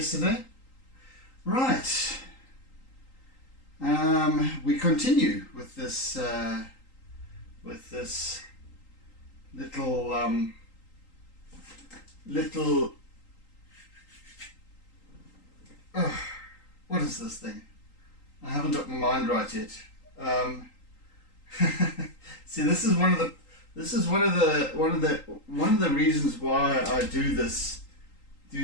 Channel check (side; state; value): right; late; 3.8 ms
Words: Right, we continue with this little what is this thing? I haven't got my mind right yet. See, this is one of the reasons why I do these